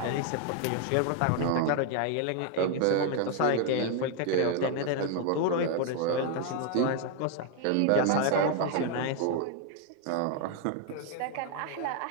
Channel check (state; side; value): different; both; correlation 0.01